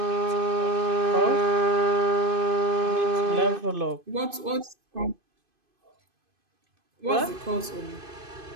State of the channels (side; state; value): left; late; 2.5 ms